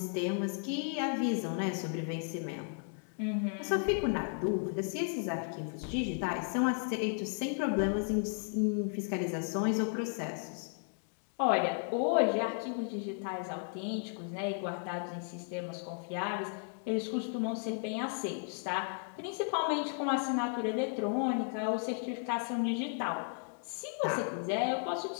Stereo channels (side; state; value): right; silent; 55 dB below the other